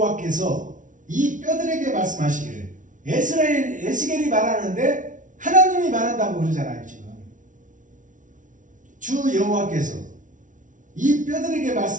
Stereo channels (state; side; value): late; left; 0.37 ms